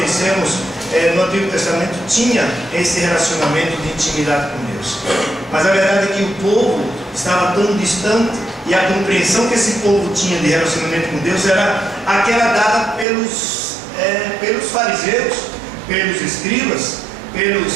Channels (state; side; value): drops out; left; at 13.1 s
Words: no Antigo Testamento tinha esse relacionamento de intimidade com Deus. Mas a verdade é que o povo estava tão distante, e a compreensão que esse povo tinha de relacionamento com Deus era aquela dada pelos fariseus, pelos escribas, pelos